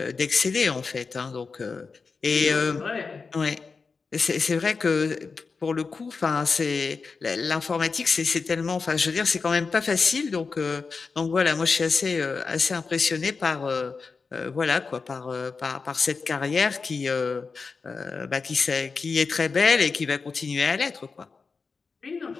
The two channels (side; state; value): right; quieter; 4.7 dB